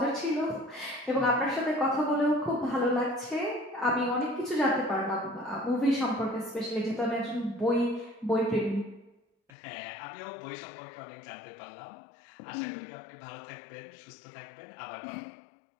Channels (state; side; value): drops out; right; at 9.5 s